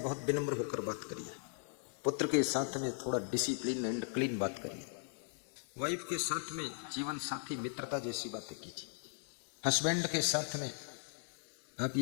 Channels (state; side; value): silent; right; digital silence